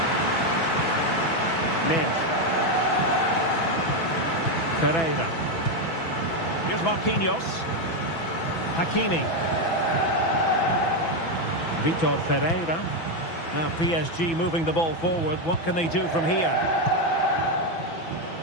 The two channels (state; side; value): late; right; 6.0 ms